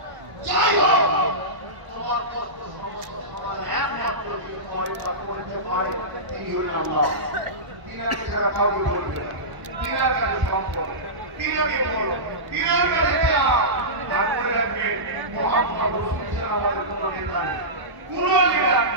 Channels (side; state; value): left; late; 1.0 ms